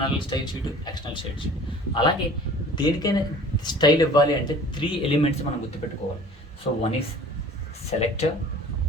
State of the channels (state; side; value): normal; both; correlation 0.46